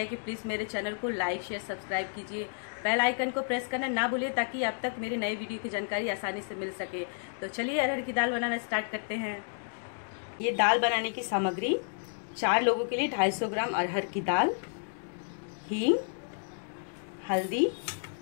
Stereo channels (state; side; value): silent; right; digital silence